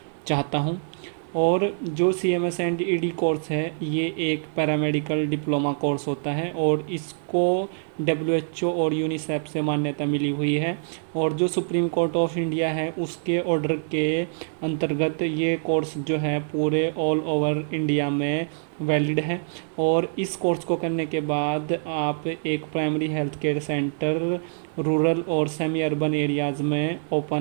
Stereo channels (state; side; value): silent; left; digital silence